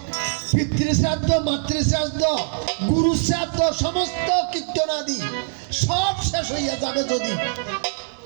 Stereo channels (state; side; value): silent; left; digital silence